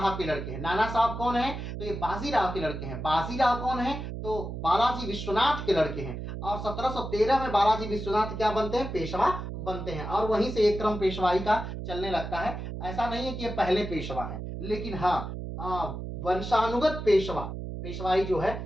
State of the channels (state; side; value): noise; right; hum, 7 dB below the sound